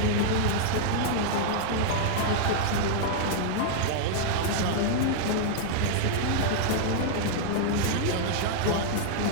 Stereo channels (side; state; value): both; different; correlation -0.01